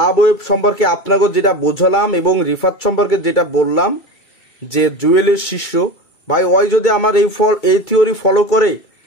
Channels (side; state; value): right; late; 2.3 ms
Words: wave সম্পর্কে আপনাকে যেটা বোঝালাম এবং রিফাত সম্পর্কে যেটা বললাম যে জুয়েলের শিষ্য ভাই, ওই যদি আমার এই থিওরি ফলো করে